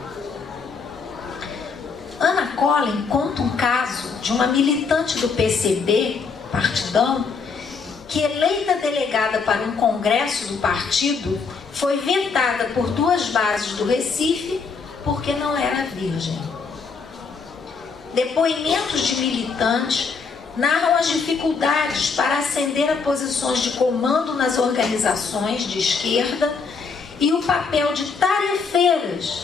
Ana Collin conta um caso de uma militante do PCB, partidão, que, eleita delegada para um congresso do partido, foi vetada por 2 bases do Recife porque não era virgem. Depoimentos de militantes narram as dificuldades para ascender a posições de comando nas organizações de esquerda e o papel de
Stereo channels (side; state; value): right; quieter; 5.2 dB